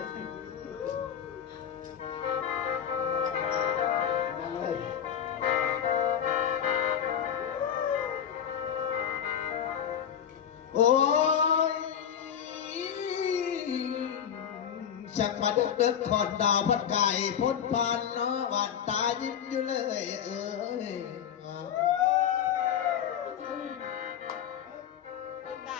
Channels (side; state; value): right; quieter; 8.9 dB